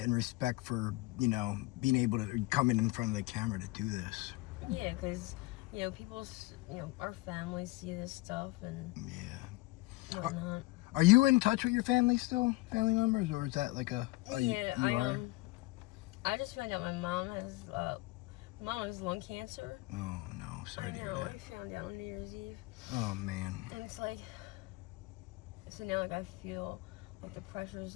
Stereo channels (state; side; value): quieter; right; 21.6 dB